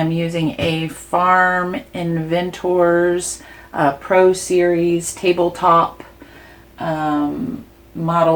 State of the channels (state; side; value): identical; both; correlation 1.00